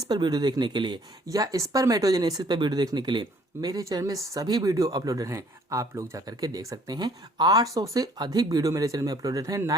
पर वीडियो देखने के लिए या स्पर्मेटोजेनेसिस पर वीडियो देखने के लिए मेरे चैनल में सभी वीडियो अपलोडेड हैं, आप लोग जाकर के देख सकते हैं। 800 से अधिक वीडियो मेरे चैनल में अपलोडेड हैं,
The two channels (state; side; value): normal; both; correlation 0.60